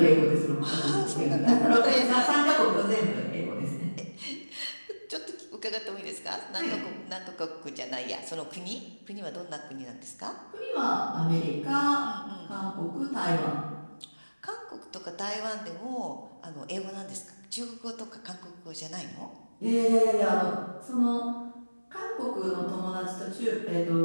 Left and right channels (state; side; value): inverted; both; correlation -1.00